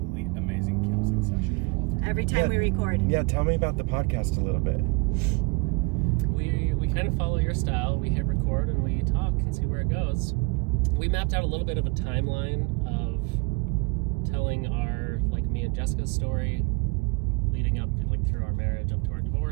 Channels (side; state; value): left; quieter; 29.0 dB